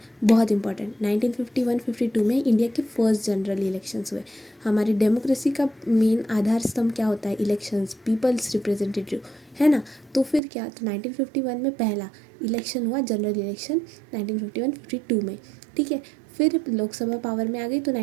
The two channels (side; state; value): left; drops out; at 10.4 s